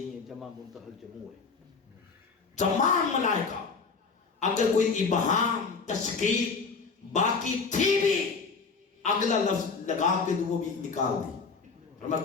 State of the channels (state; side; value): quieter; right; 4.9 dB